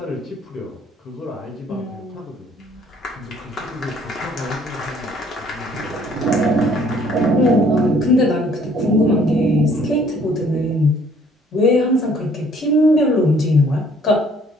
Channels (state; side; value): normal; both; correlation 0.60